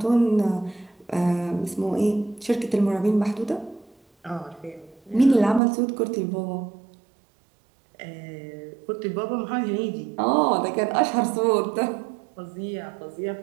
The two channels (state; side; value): drops out; left; at 5.6 s